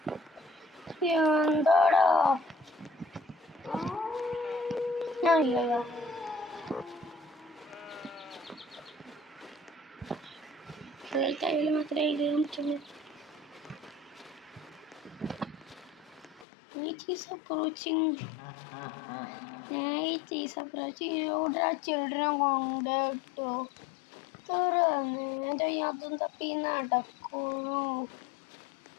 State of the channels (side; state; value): right; drops out; at 16.4 s